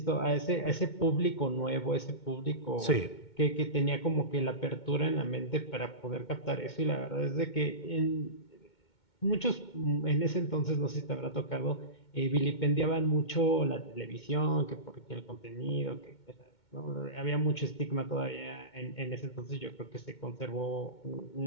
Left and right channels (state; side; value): late; right; 2.2 ms